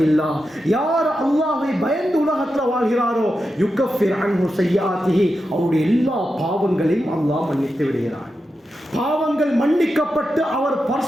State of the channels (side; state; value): both; normal; correlation 0.89